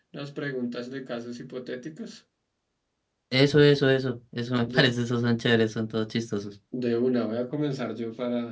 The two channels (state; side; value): identical; both; correlation 1.00